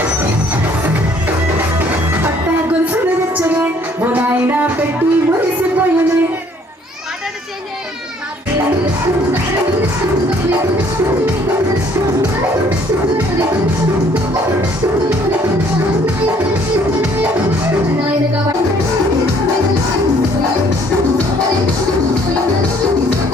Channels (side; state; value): both; normal; correlation 0.61